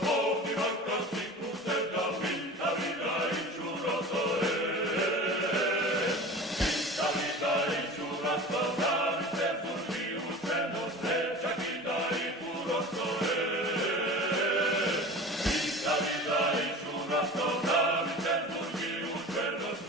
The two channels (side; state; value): both; normal; correlation 0.36